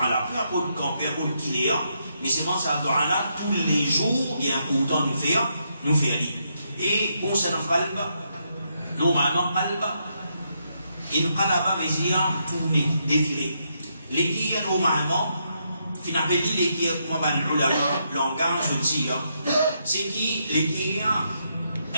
là. Peu importe le camp, peu importe qui est, mais c'est moi ça doigt là, tous les jours, il est important de faire lire. Et concernant le qalb, normalement, qalb, il qalaba veut dire tourner, défiler. Les qui normalement, finalement, les qui comme on a le langage aussi, c'est qui les qui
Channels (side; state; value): both; inverted; correlation -0.79